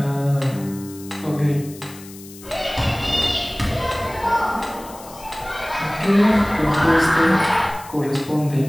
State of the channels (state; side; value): noise; left; hiss, 19 dB below the sound